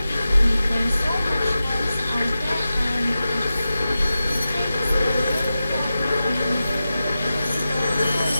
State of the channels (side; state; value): both; inverted; correlation -0.93